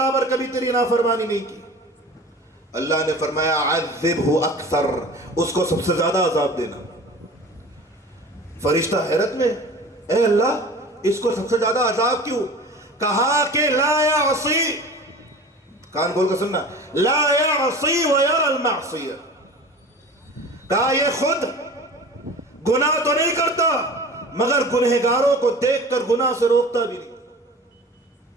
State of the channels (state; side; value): normal; both; correlation 0.39